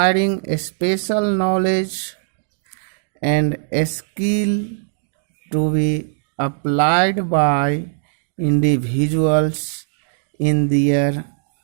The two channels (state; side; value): silent; left; digital silence